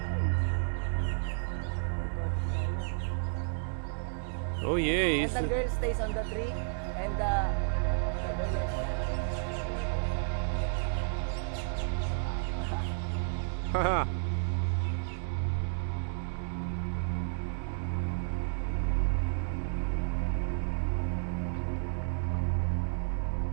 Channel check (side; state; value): left; silent; digital silence